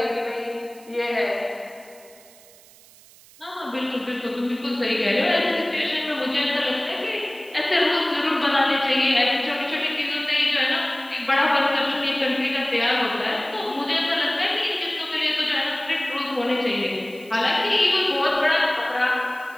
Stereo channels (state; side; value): noise; right; hiss, 24 dB below the sound